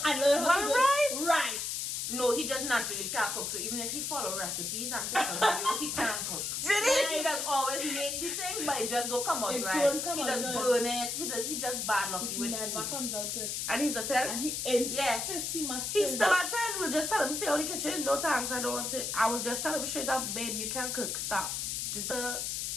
and learn how to do it right. No, he just naturally can't cook. So even if he follow recipes and different videos, he can't cook. He does always make the thing, but it just don't come out It right. don't come He out does good. burn it. He just bad lucky It with never food. comes out good. and he's a 10. And he insists Yes. he must He's do still that. at 10. We'll just tell him, stay out of the kitchen. No thanks, I don't want it. I will just tell him straight up, babe, you can't cook. Stop.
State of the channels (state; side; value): noise; left; hiss, 2 dB below the sound